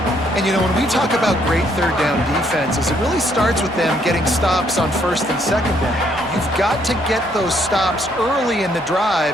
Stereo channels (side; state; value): both; normal; correlation 0.69